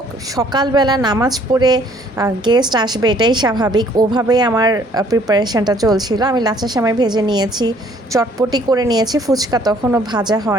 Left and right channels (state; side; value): normal; both; correlation 0.60